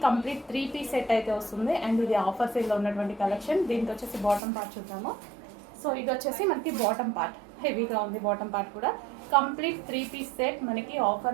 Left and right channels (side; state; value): left; drops out; at 4.4 s